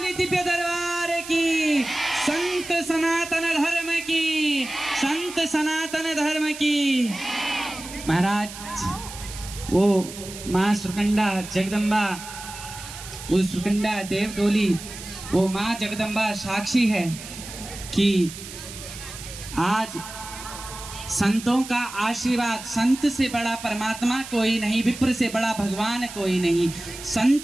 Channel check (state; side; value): noise; right; hiss, 12 dB below the sound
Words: दिव्य दरबार की, संत सनातन धर्म की, संत सनातन धर्म की। महाराज वो माँ सुरकंडा जगदम्बा, वो सुरकंडा देव डोली, वो माँ जगदम्बा साक्षी है कि आज संतों का आशीर्वाद, संत से बड़ा परमात्मा कोई नहीं, विप्र से बड़ा भगवान कोई नहीं।